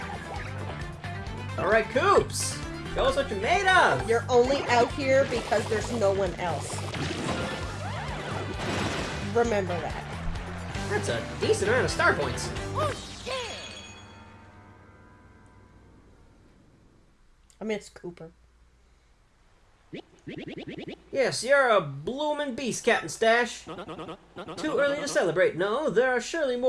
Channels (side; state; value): both; identical; correlation 1.00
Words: Alright, Koops! Show us what you're made of! You're only out here because there's no one else. Remember that. That's a decent amount of star points. I mean, it's Cooper. Yes, you're a bloomin' beast, Captain Stash. Too early to celebrate. No, there are surely